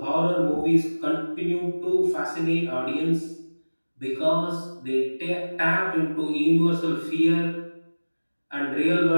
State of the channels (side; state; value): both; inverted; correlation -1.00